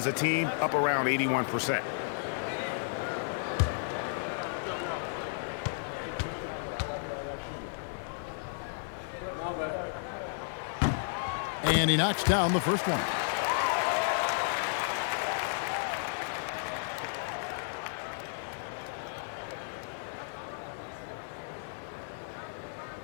a team up around 81%. And he knocks down the first one.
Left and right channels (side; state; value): right; silent; digital silence